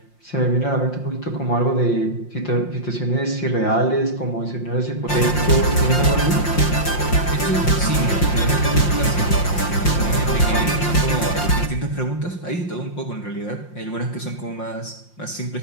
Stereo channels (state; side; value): late; right; 5.7 ms